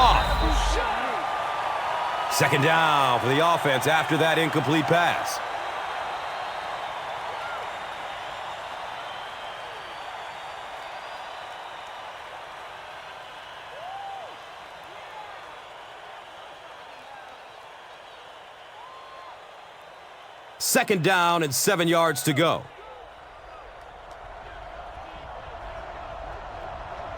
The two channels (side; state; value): both; identical; correlation 1.00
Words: Second down for the offense after that incomplete pass. Second down and 7 yards to go.